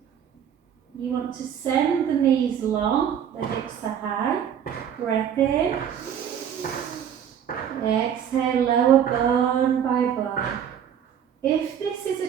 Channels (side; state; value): left; quieter; 8.8 dB